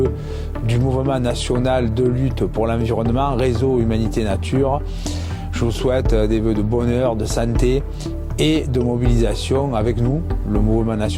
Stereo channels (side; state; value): both; identical; correlation 1.00